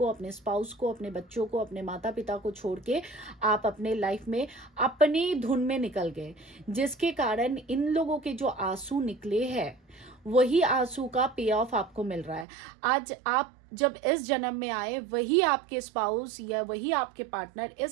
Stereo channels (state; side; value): drops out; left; at 12.5 s